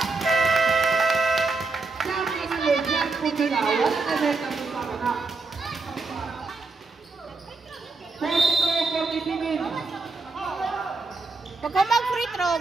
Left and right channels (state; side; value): quieter; left; 3.9 dB